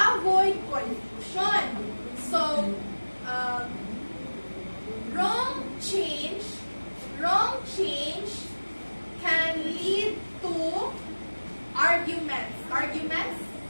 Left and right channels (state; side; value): inverted; both; correlation -1.00